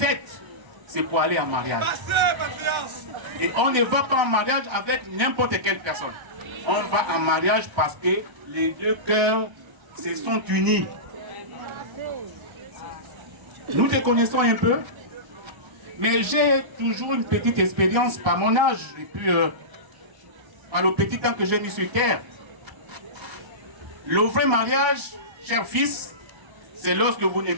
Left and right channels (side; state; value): left; late; 1.0 ms